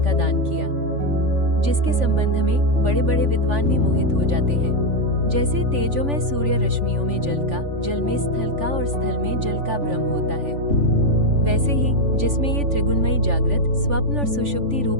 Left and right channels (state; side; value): late; left; 3.5 ms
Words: का दान किया, जिसके संबंध में बड़े बड़े विद्वान भी मोहित हो जाते हैं। जैसे तेजो में सूर्य रश्मियों में जल का, जल में स्थल का और स्थल में जल का भ्रम होता है, वैसे ही जिसमें ये त्रिगुणमयी जागृत, स्वप्न और सुषुप्ति